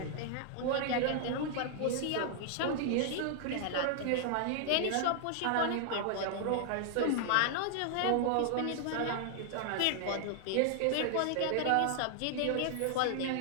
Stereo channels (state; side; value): different; both; correlation 0.00